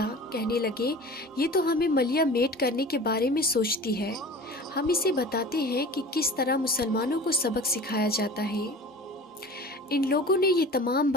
कहने लगे, ये तो हमें मलिया मेट करने के बारे में सोचती है। हम इसे बताते हैं कि किस तरह मुसलमानों को सबक सिखाया जाता है। इन लोगों ने ये तमाम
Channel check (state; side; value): normal; both; correlation 0.39